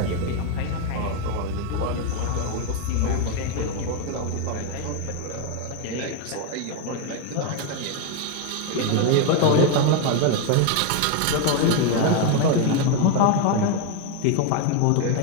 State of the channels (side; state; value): both; different; correlation 0.01